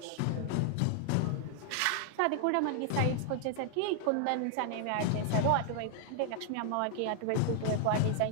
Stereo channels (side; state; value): both; different; correlation 0.00